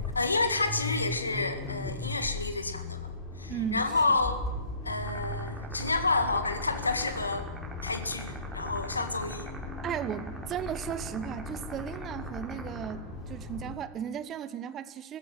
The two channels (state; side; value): inverted; both; correlation -0.45